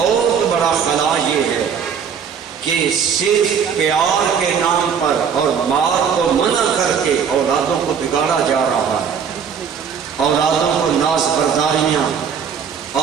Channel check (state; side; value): quieter; left; 7.1 dB